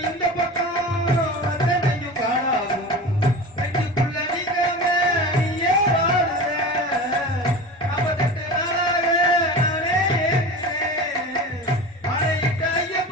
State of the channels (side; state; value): both; normal; correlation 0.32